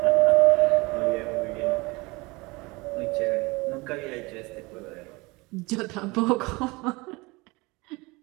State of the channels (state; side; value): quieter; left; 24.3 dB